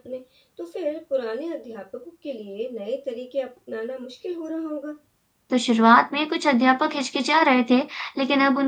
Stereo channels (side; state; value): both; identical; correlation 1.00